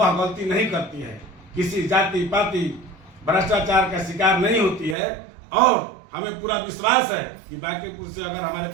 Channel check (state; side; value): drops out; left; at 5.0 s